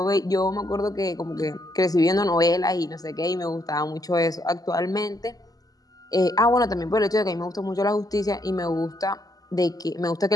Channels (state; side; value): late; right; 0.18 ms